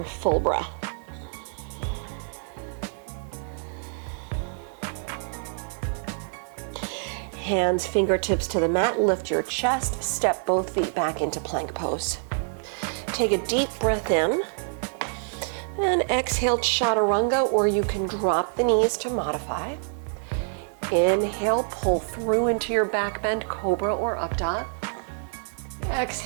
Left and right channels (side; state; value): left; silent; digital silence